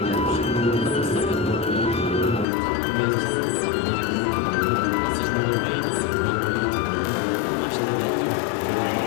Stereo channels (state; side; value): drops out; right; at 2.5 s